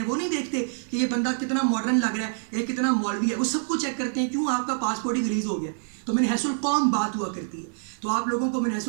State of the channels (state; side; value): silent; left; 61 dB below the other